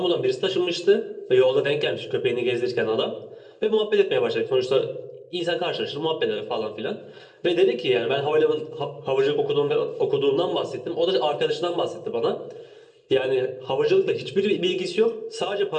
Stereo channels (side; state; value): both; identical; correlation 1.00